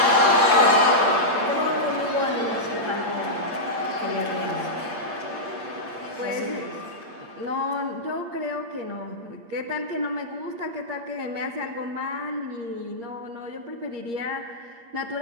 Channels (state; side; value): late; left; 8.6 ms